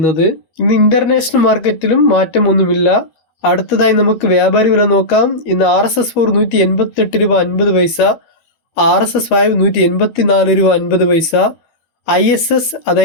ഇന്ന് ഇന്റർനാഷണൽ മാർക്കറ്റിലും മാറ്റമൊന്നുമില്ല. അടുത്തതായി നമുക്ക് വ്യാപാരി വില നോക്കാം. ഇന്ന് RSS4 188 രൂപ 50 പൈസ, RSS5 184 രൂപ 50 പൈസ, ISS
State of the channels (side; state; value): right; late; 12 ms